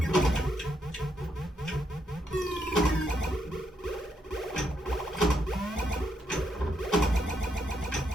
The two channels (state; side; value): normal; both; correlation 0.78